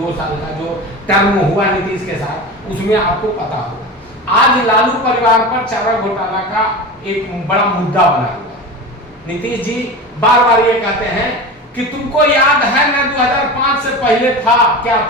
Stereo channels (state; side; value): normal; both; correlation 0.28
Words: साल का जो टर्म हुआ नीतीश के साथ, उसमें आपको पता होगा। आज लालू परिवार पर चारा घोटाला का एक बड़ा मुद्दा बना हुआ है। नीतीश जी बार बार ये कहते हैं कि तुमको याद है ना 2005 से पहले था क्या